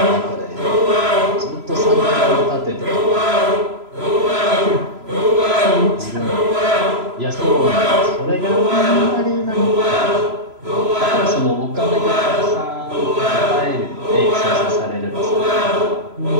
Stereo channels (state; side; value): late; left; 3.0 ms